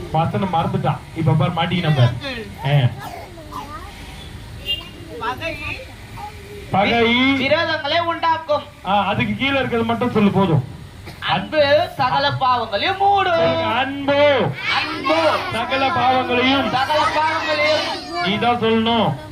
வசனம் மறந்துட்டான். இப்ப பாரு மாட்டிக்க நம்ம. பகை விரோதங்களை உண்டாக்கும். அதுக்கு கீழே இருக்கிறது மட்டும் சொல்லு போதும். அன்பு சகல பாவங்களையும் மூடும். அன்பு அன்பு சகல பாவங்களையும். சகல பாவங்களையும் நீதான் சொல்லணும்.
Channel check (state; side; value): identical; both; correlation 1.00